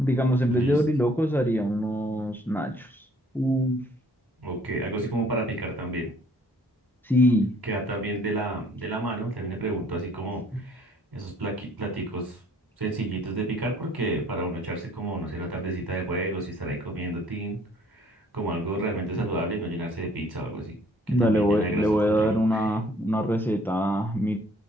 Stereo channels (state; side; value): normal; both; correlation 0.59